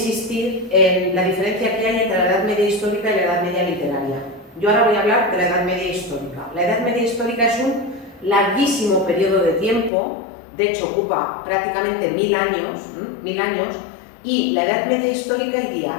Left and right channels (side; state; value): right; drops out; at 9.9 s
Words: en la diferencia que hay entre la Edad Media histórica y la Edad Media literaria. Yo ahora voy a hablar de la Edad Media histórica. La Edad Media histórica es un larguísimo periodo de tiempo, de hecho ocupa prácticamente 1000 años, y la Edad Media histórica